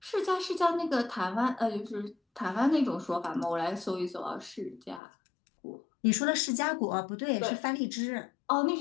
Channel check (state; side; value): drops out; right; at 5.0 s